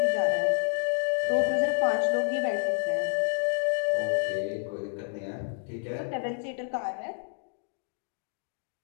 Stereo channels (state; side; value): silent; right; digital silence